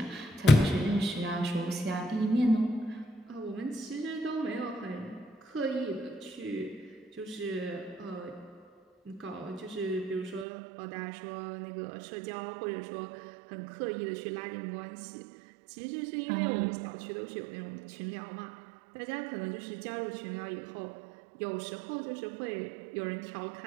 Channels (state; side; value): drops out; left; at 10.5 s